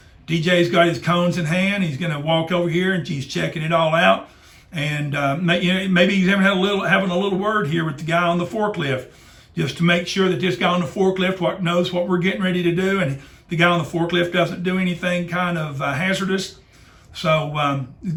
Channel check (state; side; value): identical; both; correlation 1.00